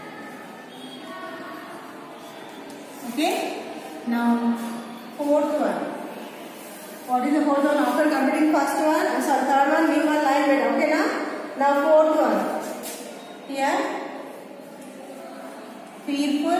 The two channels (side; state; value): both; identical; correlation 1.00